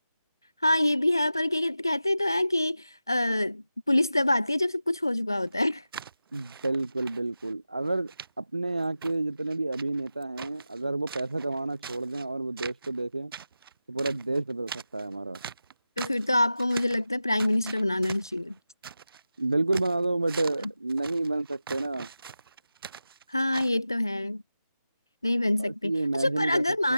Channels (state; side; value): inverted; both; correlation -0.93